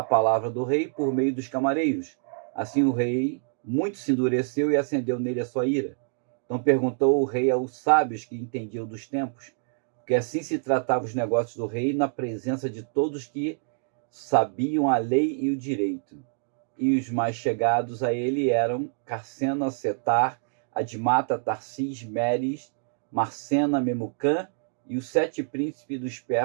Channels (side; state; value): left; silent; digital silence